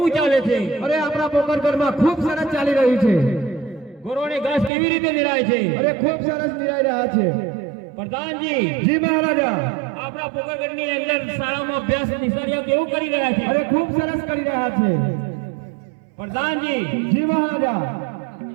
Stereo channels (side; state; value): left; drops out; at 4.7 s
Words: ચાલે છે? અરે આપણા પોકરગઢમાં ખૂબ સરસ ચાલી રહ્યું છે. ગોરોને ઘાસ કેવી રીતે નિરાય છે? અરે ખૂબ સરસ નિરાઈ રહ્યા છે. પ્રધાનજી, જી મહારાજા. આપણા પોકરગઢની અંદર શાળામાં અભ્યાસ નિશાળીઓ કેવું કરી રહ્યા છે? અરે ખૂબ સરસ કરી રહ્યા છે. પ્રધાનજી, જી મહારાજા.